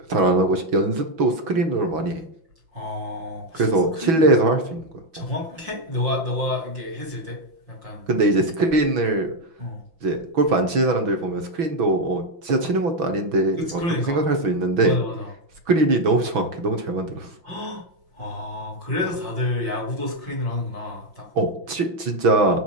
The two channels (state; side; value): late; left; 6.2 ms